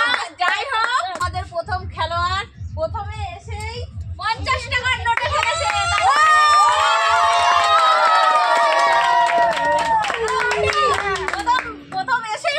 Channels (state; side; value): identical; both; correlation 1.00